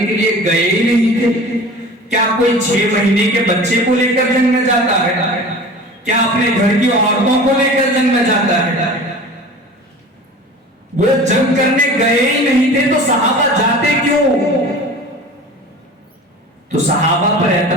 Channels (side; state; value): both; normal; correlation 0.39